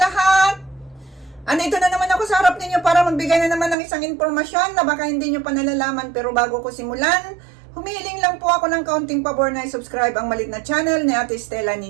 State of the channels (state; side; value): drops out; left; at 3.8 s